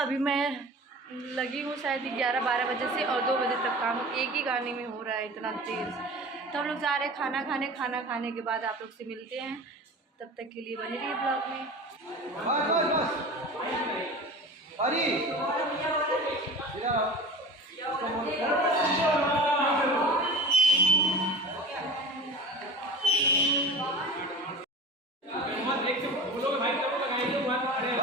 मैं लगी हूँ शायद 11-12 बजे से और 2 बजे तक काम एक ही गाने में हो रहा है, इतना तेज। तो हम लोग जा रहे हैं खाना खाने। खाना खाने के बाद आप लोग से मिलते हैं, तब तक के लिए बने रहिए ब्लॉग में।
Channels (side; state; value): both; normal; correlation 0.37